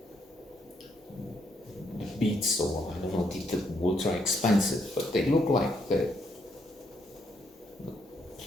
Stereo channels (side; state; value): both; normal; correlation 0.74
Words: beats, or I don't know, they're ultra expensive, but they look like the